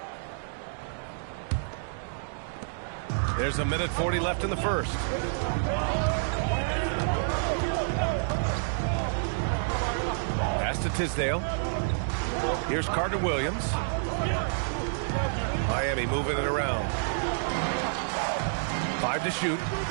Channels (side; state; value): left; silent; digital silence